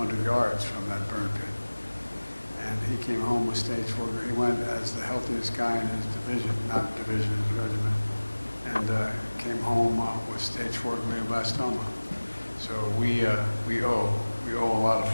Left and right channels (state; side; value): inverted; both; correlation -1.00